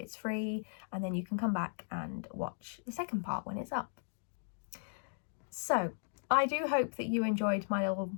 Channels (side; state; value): right; silent; digital silence